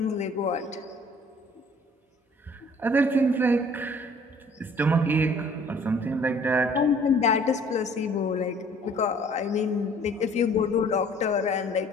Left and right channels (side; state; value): both; normal; correlation 0.54